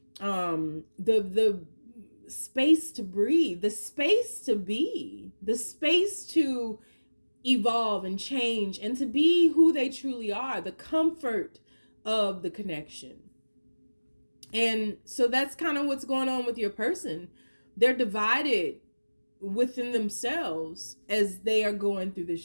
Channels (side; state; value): both; inverted; correlation -1.00